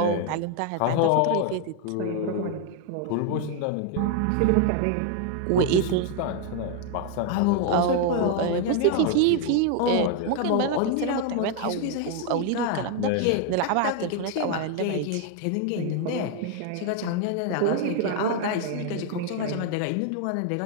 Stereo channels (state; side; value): different; both; correlation 0.01